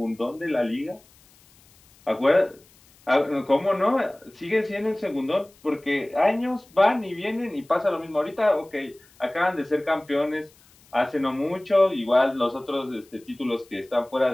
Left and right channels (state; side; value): noise; left; hiss, 29 dB below the sound